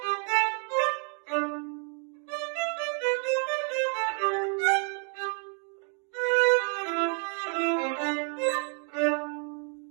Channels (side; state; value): left; quieter; 39.1 dB